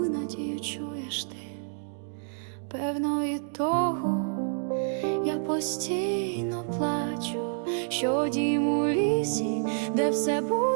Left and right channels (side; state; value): left; silent; digital silence